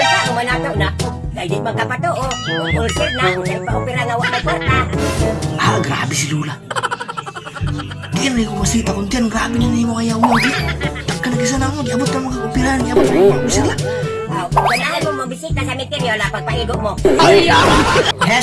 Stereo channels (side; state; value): both; identical; correlation 1.00